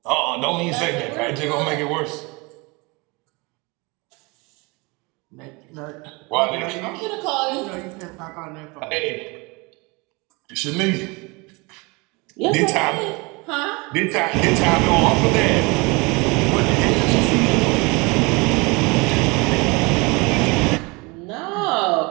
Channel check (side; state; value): left; quieter; 26.7 dB